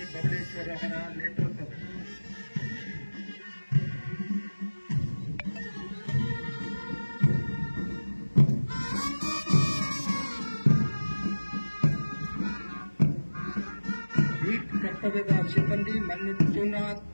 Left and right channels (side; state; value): both; inverted; correlation -1.00